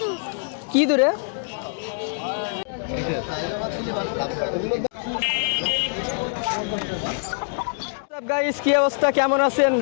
কি দূরে? গাইস, কি অবস্থা, কেমন আছেন?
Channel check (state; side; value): silent; right; digital silence